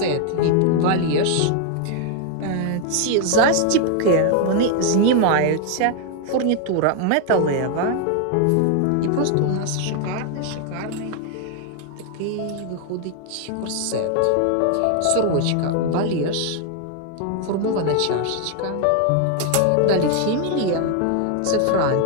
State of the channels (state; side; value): different; both; correlation 0.00